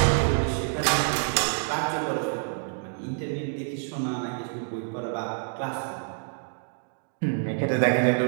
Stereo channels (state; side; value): silent; left; digital silence